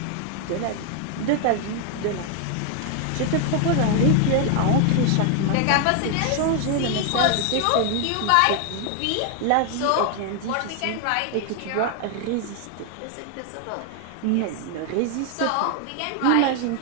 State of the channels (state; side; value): different; both; correlation 0.00